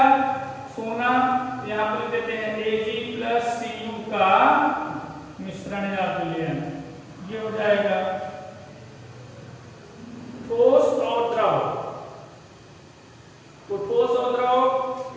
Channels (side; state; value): both; identical; correlation 1.00